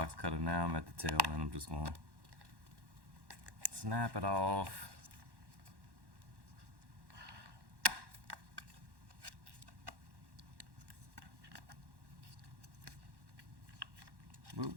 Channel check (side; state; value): left; late; 1.1 ms